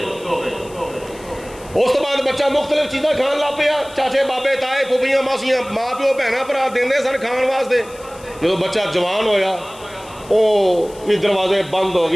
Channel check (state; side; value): noise; left; hiss, 22 dB below the sound